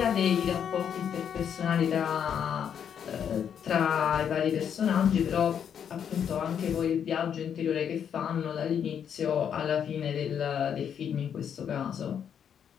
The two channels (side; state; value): right; quieter; 8.3 dB